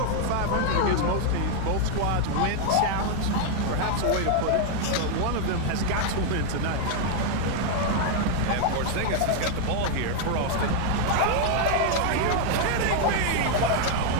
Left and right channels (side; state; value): both; different; correlation 0.00